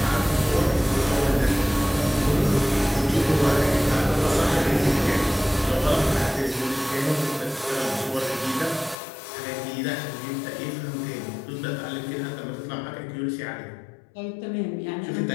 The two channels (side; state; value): right; drops out; at 9.0 s